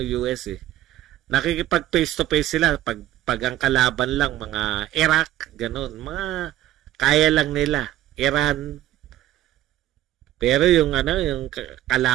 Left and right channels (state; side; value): quieter; left; 13.7 dB